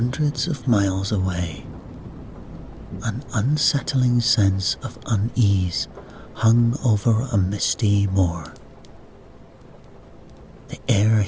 of miles away, an unsettling sense of unease hung over a misty moor. The air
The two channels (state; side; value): identical; both; correlation 1.00